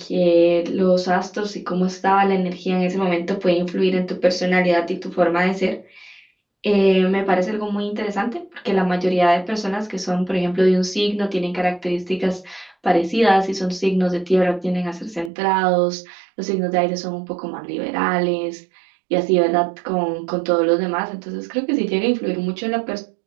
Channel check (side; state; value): left; drops out; at 15.3 s